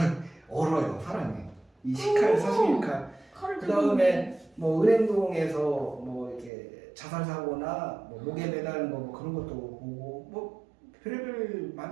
얼어요 사람이. 이 10칼, 41칼. 그 다음에 뭐 은행동에서 뭐 이렇게 자살 사고나 뭐 목에 매달린 거 뭐 그런 것도 보고 뭐 별의별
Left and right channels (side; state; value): left; drops out; at 6.5 s